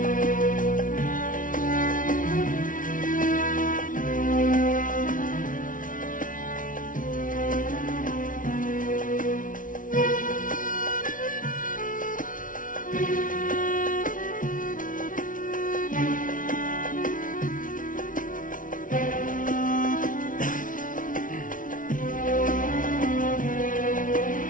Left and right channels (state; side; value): late; right; 0.38 ms